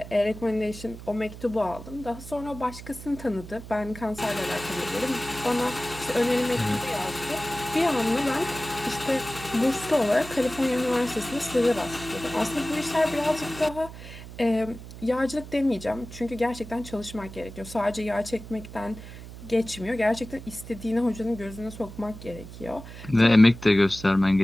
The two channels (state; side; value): noise; right; hum, 14 dB below the sound